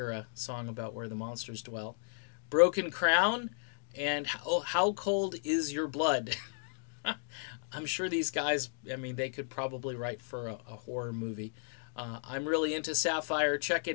a song about where the monsters dwell. Broken Crown, and How Cold Is Your Blood? I'm sure these guys, I mean, they could probably write for a horror movie. I'm really into Saffire. Check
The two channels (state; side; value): silent; right; digital silence